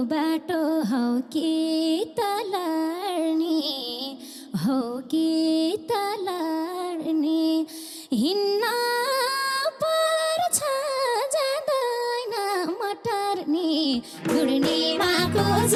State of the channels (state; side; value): identical; both; correlation 1.00